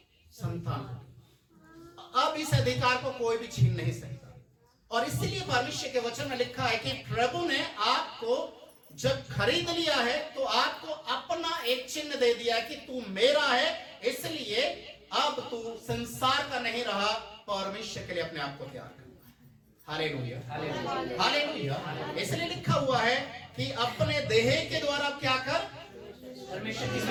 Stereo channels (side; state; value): both; identical; correlation 1.00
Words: संतान हो। अब इस अधिकार को कोई भी छीन नहीं सकता। और इसलिए परमेश्वर के वचन में लिखा है कि प्रभु ने आपको जब खरीद लिया है तो आपको अपना एक चिन्ह दे दिया है कि तू मेरा है, इसलिए अब तू संसार का नहीं रहा, परमेश्वर के लिए अपने आप को तैयार करना। Hallelujah, hallelujah. इसलिए लिखा हुआ है कि अपने देह के द्वारा क्या कर, परमेश्वर की